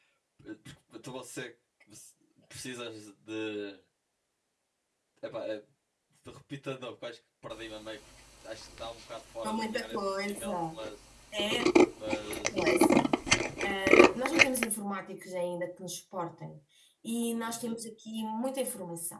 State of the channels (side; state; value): both; identical; correlation 1.00